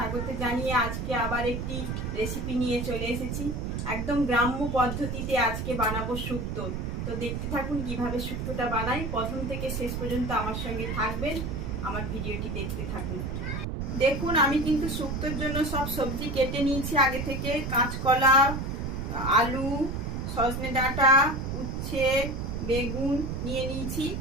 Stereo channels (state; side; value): noise; right; rumble, 3 dB below the sound